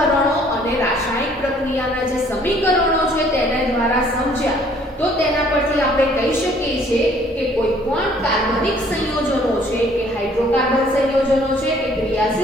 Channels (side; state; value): both; normal; correlation 0.59